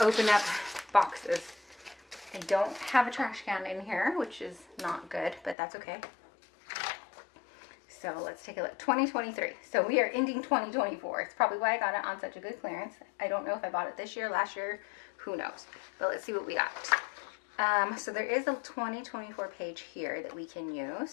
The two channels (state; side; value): drops out; right; at 5.6 s